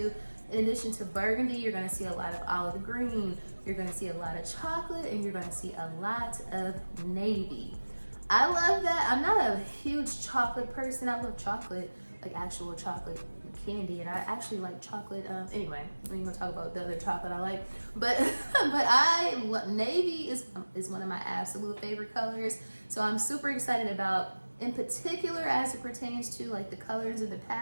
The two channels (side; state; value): both; inverted; correlation -1.00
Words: In addition to burgundy, you're going to see a lot of olive green, you're going to see a lot of chocolate, and you're going to see a lot of navy. I love that. I'm not a huge chocolate person. I love chocolate, like actual chocolate candy, and I actually like chocolate. Anyway, we ain't gonna talk about the other chocolate I like, but navy is one of my absolute favorite colors. So I'm super excited about, in particular, as it pertains to like the colors and the